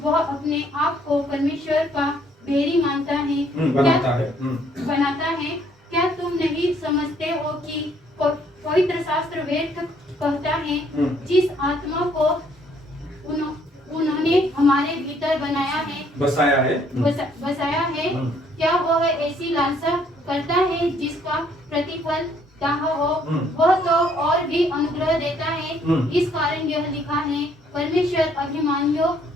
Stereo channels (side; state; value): both; normal; correlation 0.65